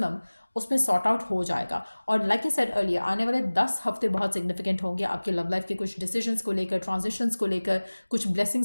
उसमें सॉर्ट आउट हो जाएगा। और लाइक आई सेड अर्लियर, आने वाले 10 हफ्ते बहुत सिग्निफिकेंट होंगे आपकी लव लाइफ के कुछ डिसीजंस को लेकर, ट्रांजिशंस को लेकर, कुछ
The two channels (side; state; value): both; inverted; correlation -1.00